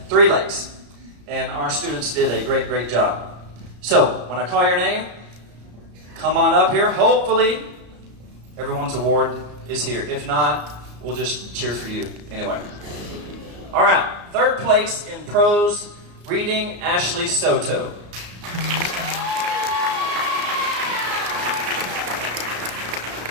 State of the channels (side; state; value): left; late; 34 ms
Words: Three Lakes. And our students did a great job. So when I call your name, come on up here. Hopefully everyone's award is here. If not, we'll just cheer for you anyway. All right. 3rd place in prose reading, Ashley Soto.